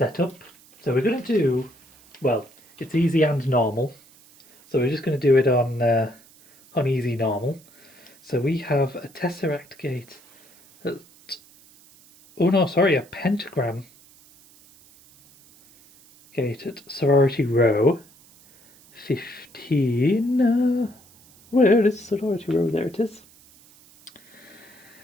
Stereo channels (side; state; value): right; noise; hiss, 27 dB below the sound